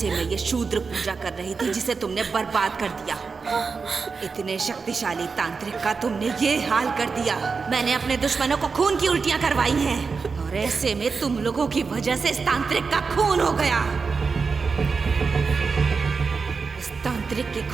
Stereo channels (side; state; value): left; quieter; 4.9 dB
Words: मैं ये शूद्र पूजा कर रही थी जिसे तुमने बर्बाद कर दिया। इतने शक्तिशाली तांत्रिक का तुमने ये हाल कर दिया। मैंने अपने दुश्मनों को खून की उल्टियां करवाई हैं और ऐसे में तुम लोगों की वजह से इस तांत्रिक का खून हो गया। इस तांत्रिक के